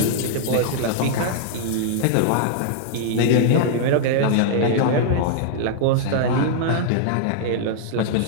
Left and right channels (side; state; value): both; different; correlation -0.01